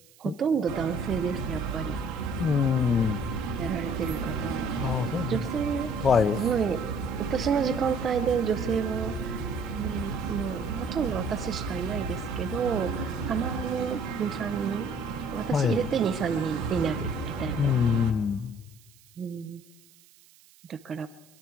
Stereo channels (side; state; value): right; noise; hiss, 27 dB below the sound